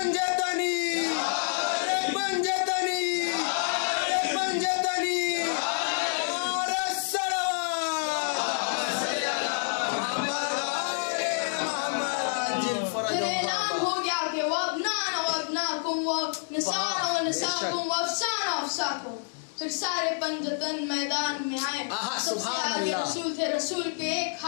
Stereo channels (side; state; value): right; silent; digital silence